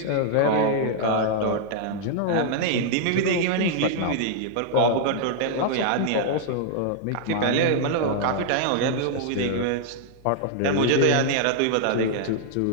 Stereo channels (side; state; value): both; different; correlation -0.01